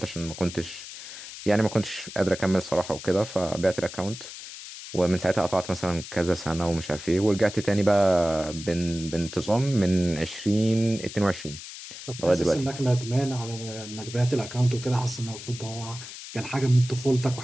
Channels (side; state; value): left; noise; hiss, 12 dB below the sound